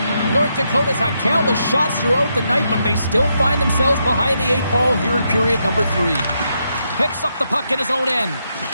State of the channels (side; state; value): both; inverted; correlation -0.81